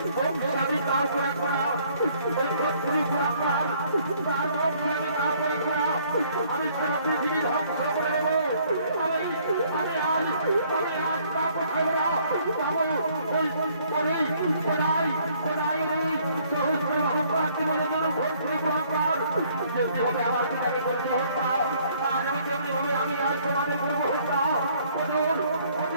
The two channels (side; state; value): both; inverted; correlation -0.62